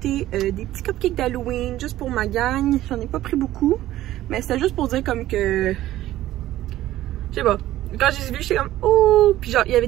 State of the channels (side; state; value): left; quieter; 14.4 dB